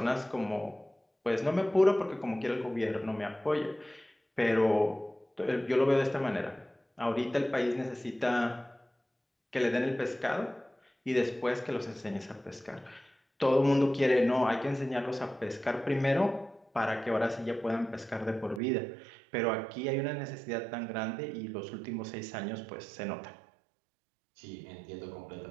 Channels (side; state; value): left; drops out; at 18.6 s